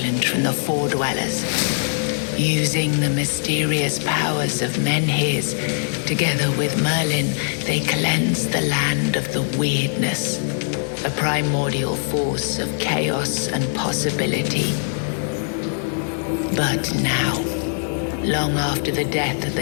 from the Four Dwellers. Using the mysterious powers of Menhirs, together with Merlin, they cleansed the land of the weirdness, a primordial force of chaos and possibility. But now, long after the death of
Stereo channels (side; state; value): right; silent; digital silence